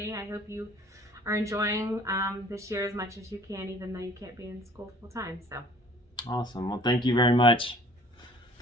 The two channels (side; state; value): both; normal; correlation 0.52